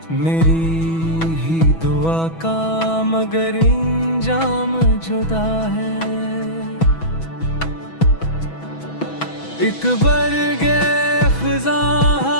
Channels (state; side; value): late; right; 6.1 ms